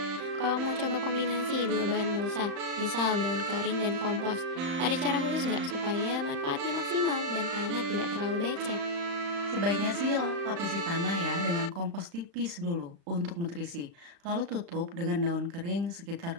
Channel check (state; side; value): late; left; 35 ms